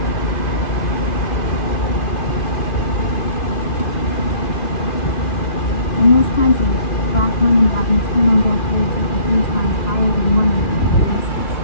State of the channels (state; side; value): late; right; 2.5 ms